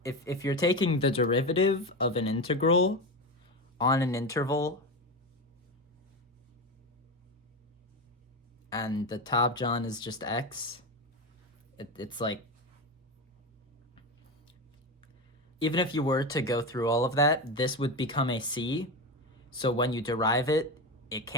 if you're taking the derivative of an integral on an interval and the top John is just x, it's like, even if you were to go through all of that, this would become a c, so when you derive it, it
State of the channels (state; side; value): normal; both; correlation 0.19